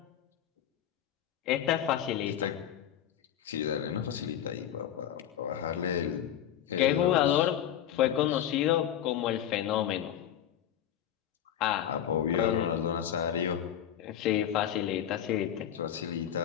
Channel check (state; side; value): quieter; right; 10.4 dB